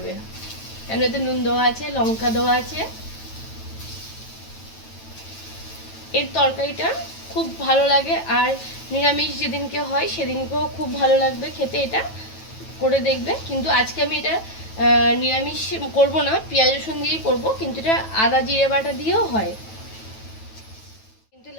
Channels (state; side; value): late; right; 9.2 ms